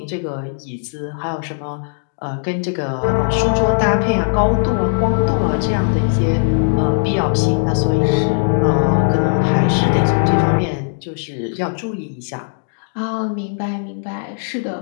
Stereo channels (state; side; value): silent; right; digital silence